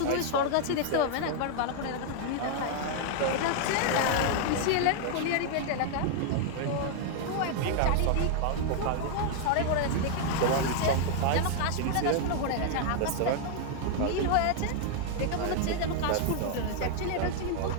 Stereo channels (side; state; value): both; different; correlation 0.00